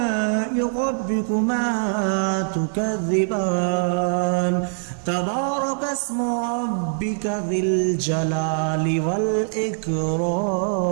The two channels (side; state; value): left; silent; 57 dB below the other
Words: ربكما تكذبان تبارك اسم ربك ذي الجلال